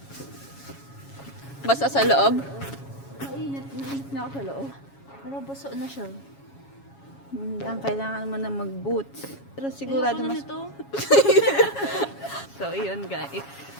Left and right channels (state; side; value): late; right; 7.2 ms